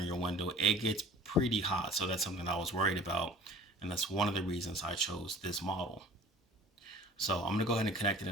your window. It gets pretty hot, so that's something I was worried about, and that's one of the reasons I chose this model. So I'm gonna go ahead and connect it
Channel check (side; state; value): both; normal; correlation 0.45